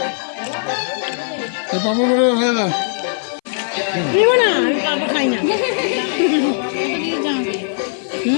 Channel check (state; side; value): silent; right; 61 dB below the other